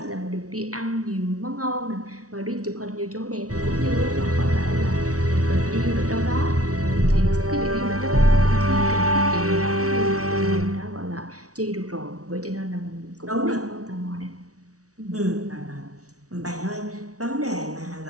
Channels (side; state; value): left; late; 0.67 ms